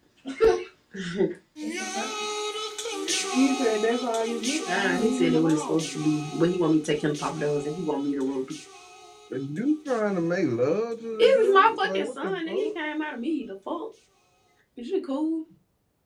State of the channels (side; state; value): both; identical; correlation 1.00